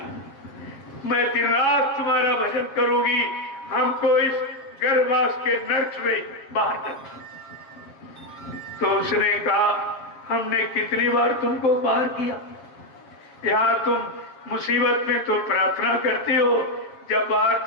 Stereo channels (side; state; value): right; late; 7.2 ms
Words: मैं दिन रात तुम्हारा भजन करूंगी, हमको इस गर्भवास के नर्क से बाहर कर। तो उसने कहा हमने कितनी बार तुमको बाहर किया, यहाँ तुम मुसीबत में तो प्रार्थना करती हो, जब बाहर